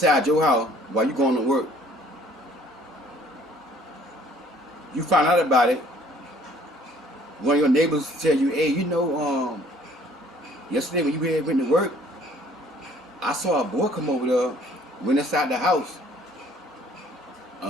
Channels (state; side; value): normal; both; correlation 0.57